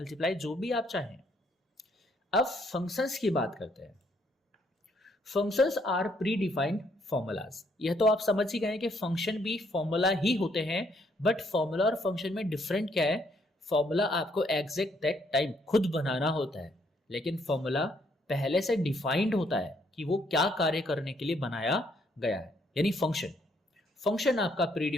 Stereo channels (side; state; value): both; normal; correlation 0.70